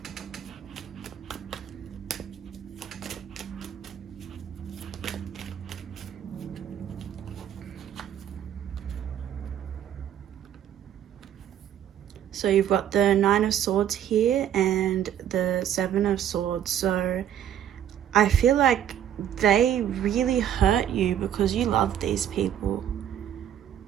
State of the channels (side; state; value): left; quieter; 10.2 dB